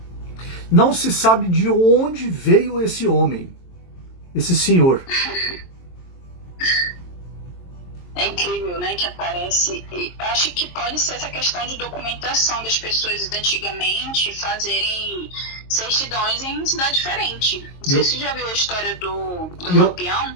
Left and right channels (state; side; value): late; right; 22 ms